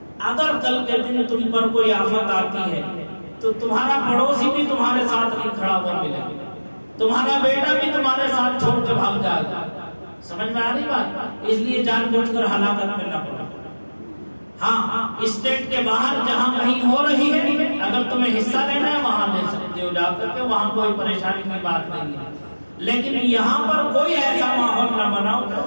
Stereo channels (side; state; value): both; inverted; correlation -1.00